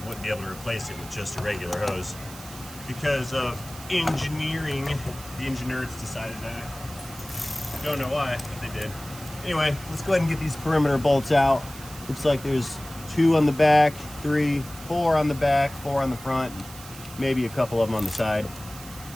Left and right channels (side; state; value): right; noise; hiss, 16 dB below the sound